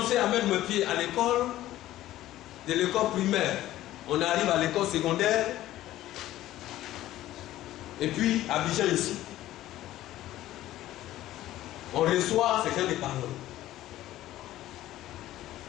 à mettre mes pieds à l'école, de l'école primaire, on arrive à l'école secondaire, et puis à Abidjan ici, on reçoit ces gens de paroles.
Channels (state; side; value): quieter; right; 14.5 dB